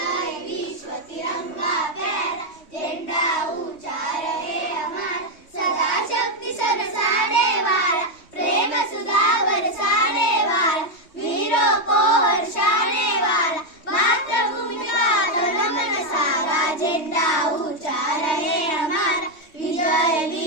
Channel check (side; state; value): right; late; 3.2 ms